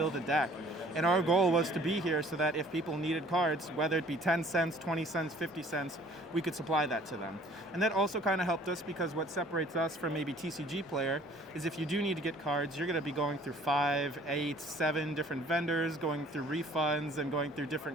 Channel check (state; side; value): normal; both; correlation 0.54